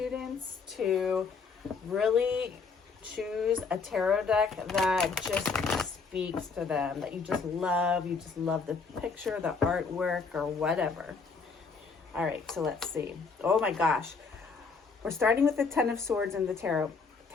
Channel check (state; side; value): quieter; right; 4.8 dB